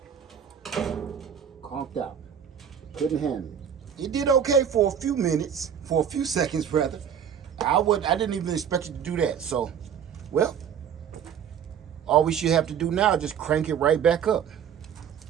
Conked out. Couldn't handle it. It did okay for a few minutes, for a few seconds rather. I didn't even expect it to do that. So, well, all we should have to do now is just crank it right back up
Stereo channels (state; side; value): quieter; left; 8.3 dB